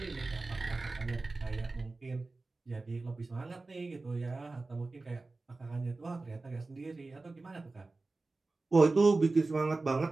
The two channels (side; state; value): left; quieter; 3.4 dB